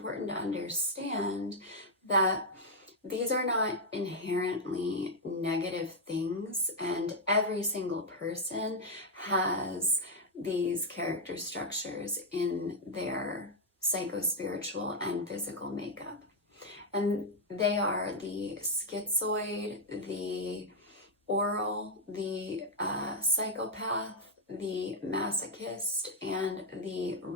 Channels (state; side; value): normal; both; correlation -0.01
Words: to understand that these are not inherently negative things, and every single person has these character structures in their psychospiritual and physical makeup. And they are the schizoid, the oral, the psychopath, the masochist, and the